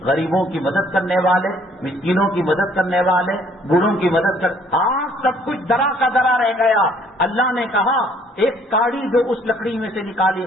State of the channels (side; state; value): both; normal; correlation 0.61